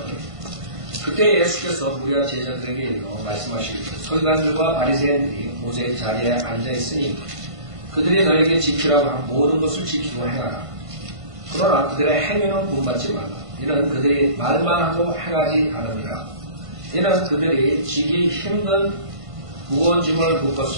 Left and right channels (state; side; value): late; left; 1.5 ms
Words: 그때 예수께서 무리와 제자들에게 이르러 말씀하시기를 서기관들과 바리새인들이 모세의 자리에 앉아있으니 그들이 너에게 지키라고 한 모든 것을 지키고 행하라. 그러나 그들의 행위는 본받지 말라. 이는 그들이 말만 하고 행하지 않으니라. 이는 그들이 지기 힘든 무거운 짐을